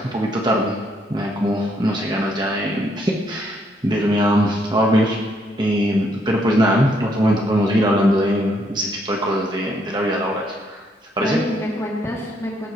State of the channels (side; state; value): both; normal; correlation 0.72